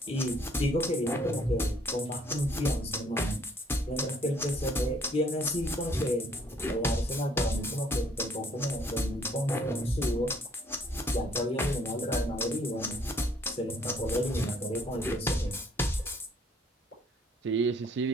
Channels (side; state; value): both; normal; correlation 0.62